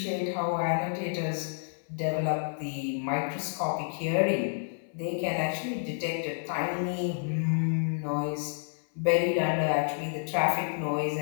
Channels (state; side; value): silent; right; 58 dB below the other